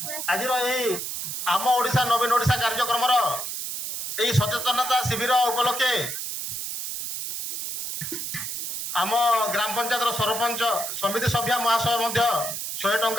ଆଜିର ଏହି ଆମ ଓଡ଼ିଶା ନବୀନ ଓଡ଼ିଶା କାର୍ଯ୍ୟକ୍ରମର ଏହି ସଚେତନତା ଶିବିର ଉପଲକ୍ଷେ ଆମ ଗ୍ରାମ ପଞ୍ଚାୟତର ସରପଞ୍ଚ ସମିତି ସଭ୍ୟା ମହାଶୟ ମଧ୍ୟ 100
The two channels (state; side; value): noise; right; hiss, 5 dB below the sound